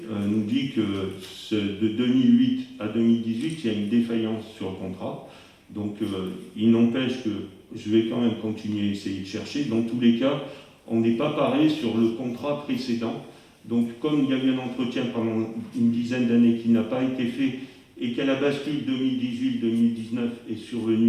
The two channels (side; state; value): both; identical; correlation 1.00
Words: nous dit que de 2008 à 2018, il y a une défaillance sur le contrat. Donc, il n'empêche que je vais quand même continuer à essayer de chercher. Dans tous les cas, on n'est pas paré sur le contrat précédent. Donc, comme il y a eu un entretien pendant une dizaine d'années qui n'a pas été fait, et qu'à la bascule 2018-2019 est